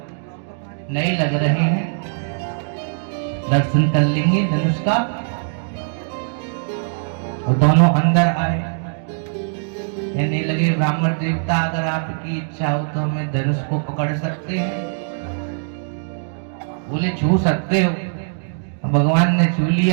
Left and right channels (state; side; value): silent; left; digital silence